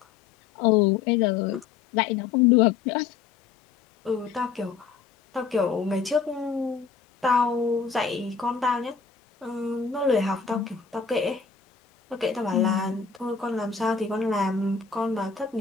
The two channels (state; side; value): quieter; right; 5.9 dB